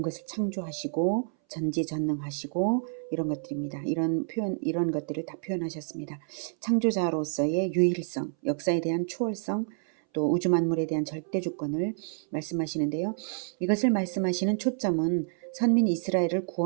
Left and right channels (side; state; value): left; silent; 59 dB below the other